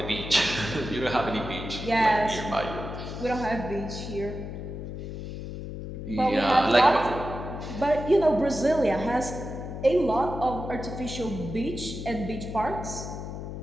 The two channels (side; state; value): left; noise; hum, 8 dB below the sound